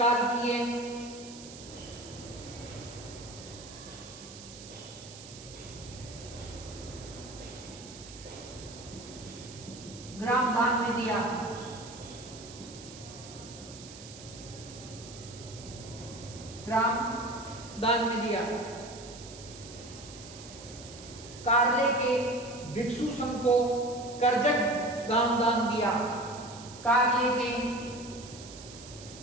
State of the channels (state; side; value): noise; right; hiss, 15 dB below the sound